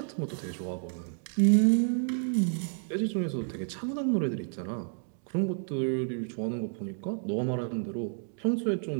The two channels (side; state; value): left; silent; 58 dB below the other